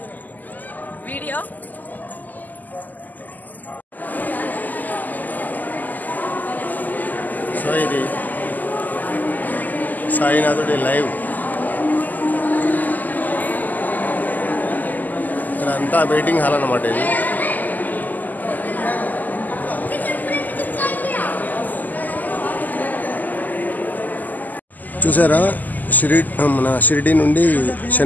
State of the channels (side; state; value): right; late; 0.083 ms